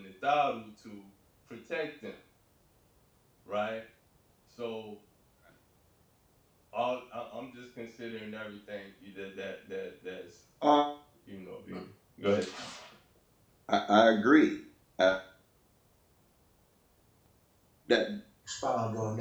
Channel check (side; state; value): both; identical; correlation 1.00